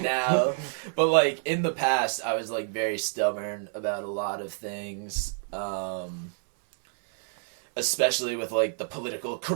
now. But like in the past, I was like very stubborn about a lot of things. Especially with like the political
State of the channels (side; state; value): left; silent; digital silence